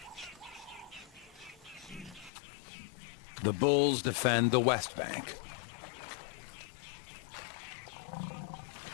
The bulls defend the west bank.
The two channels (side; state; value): right; drops out; at 2.3 s